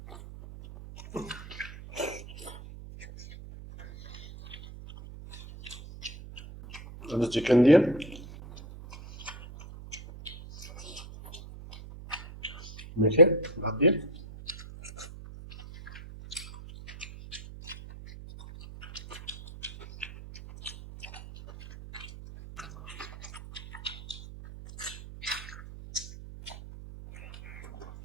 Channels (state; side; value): noise; right; hum, 14 dB below the sound